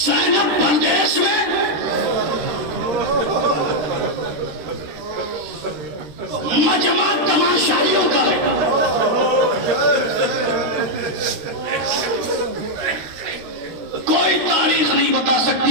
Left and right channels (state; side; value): late; left; 13 ms